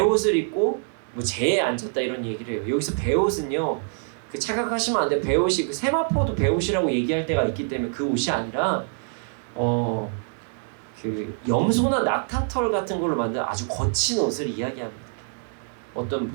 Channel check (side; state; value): left; silent; 62 dB below the other